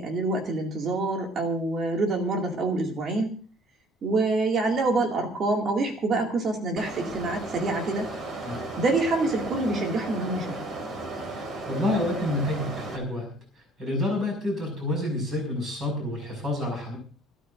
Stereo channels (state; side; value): normal; both; correlation 0.56